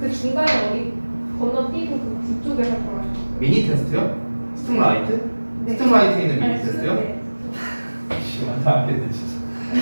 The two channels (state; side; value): inverted; both; correlation -1.00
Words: 중간에 어디 건너뛰고 그쪽에 할 거라고. 미니 테스트요? 스팀라이트? 네. 스팀라이트에 있는 미니 아니, 테스트요? 네. 지금 안하겠네 진짜.